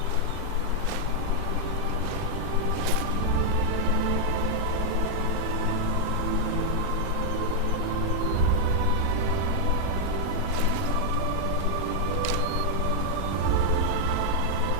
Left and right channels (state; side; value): different; both; correlation -0.01